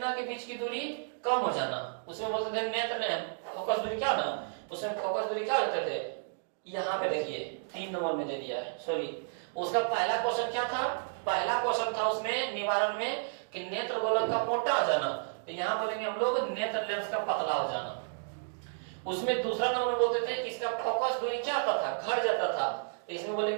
के बीच की दूरी कम हो जाना, उसमें बोलते थे नेत्र लेंस फोकस दूरी क्या ना, उसमें फोकस दूरी क्या होते थे, यहाँ पे देखिए 3 नंबर में दे दिया है, सॉरी उसका पहला क्वेश्चन क्या था, पहला क्वेश्चन था उसमें निवारण में कि नेत्र गोलक का मोटा हो जाना, तो यहाँ बोलेंगे हम लोग नेत्र लेंस का पतला हो जाना। उसमें दूसरा नंबर में बोलते थे कि इसका फोकस दूरी क्या होता था, घट जाता था, इसमें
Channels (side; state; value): left; silent; digital silence